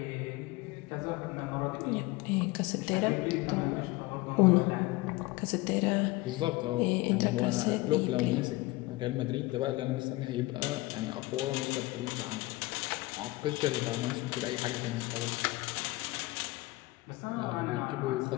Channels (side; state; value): right; quieter; 20.8 dB